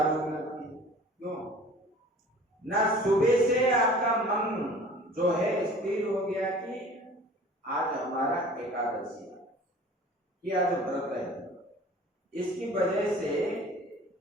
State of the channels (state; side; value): normal; both; correlation 0.46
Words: भूख लगती है। क्यों? ना सुबह से आपका मन जो है स्थिर हो गया कि आज हमारा एकादशी है, कि आज व्रत है। इसकी वजह से